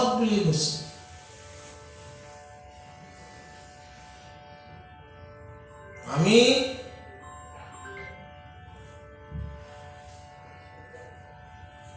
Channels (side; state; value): both; identical; correlation 1.00